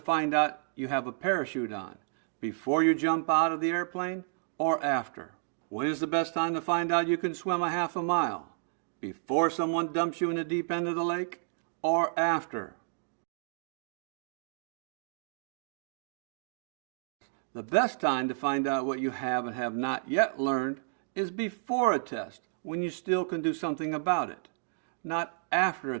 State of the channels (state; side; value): silent; left; digital silence